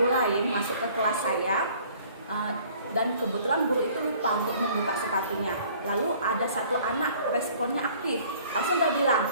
lain masuk ke kelas saya, dan kebetulan guru itu lupa untuk membuka sepatunya. Lalu ada satu anak responnya aktif, langsung dia bilang,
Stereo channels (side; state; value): both; inverted; correlation -0.54